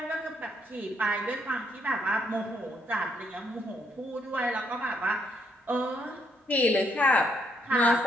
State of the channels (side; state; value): both; normal; correlation 0.74